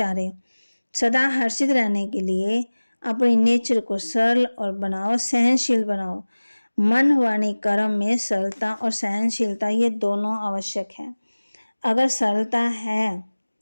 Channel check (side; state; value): both; inverted; correlation -1.00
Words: सदा हर्षित रहने के लिए अपनी नेचर को सरल और बनाओ, सहनशील बनाओ। मन वाणी कर्म में सरलता और सहनशीलता ये दोनों आवश्यक है। अगर सरलता है,